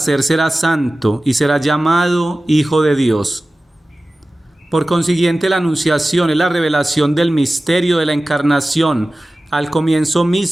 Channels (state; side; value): normal; both; correlation 0.96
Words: será santo y será llamado Hijo de Dios. Por consiguiente, la anunciación es la revelación del misterio de la encarnación al comienzo